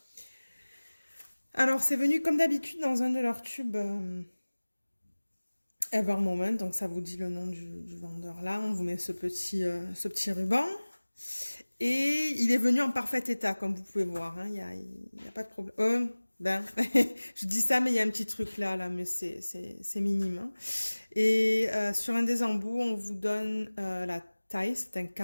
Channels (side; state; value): both; inverted; correlation -1.00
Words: Alors, c'est venu comme d'habitude dans un de leurs tubes Ever Moment. Donc, ça vous dit le nom du vendeur là. On vous met ce petit ruban. Et il est venu en parfait état, comme vous pouvez voir. Hein. Il y a pas de problème. Je dis ça, mais il y a un petit truc là, mais c'est minime. Hein. Et sur un des embouts, on vous donne la taille, c'est un